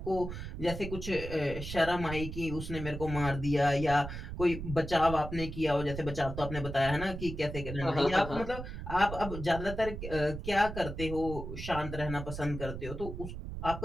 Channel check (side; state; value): right; noise; rumble, 8 dB below the sound